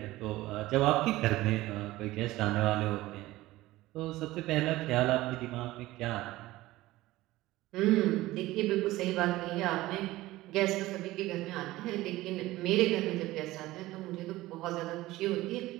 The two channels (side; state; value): left; quieter; 17.6 dB